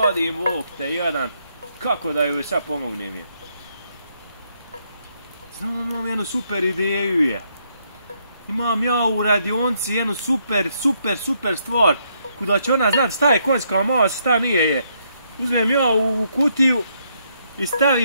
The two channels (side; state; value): both; inverted; correlation -0.74